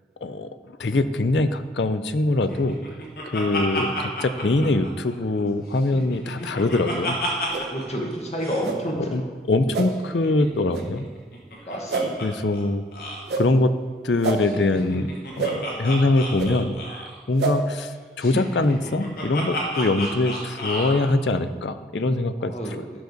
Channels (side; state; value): both; normal; correlation 0.57